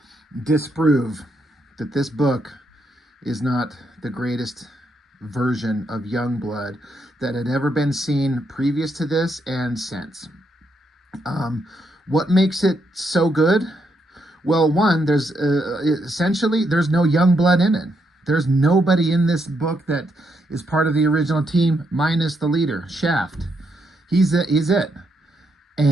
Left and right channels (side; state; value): both; normal; correlation 0.78